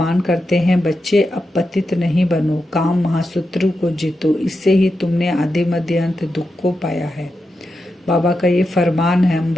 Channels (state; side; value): normal; both; correlation 0.88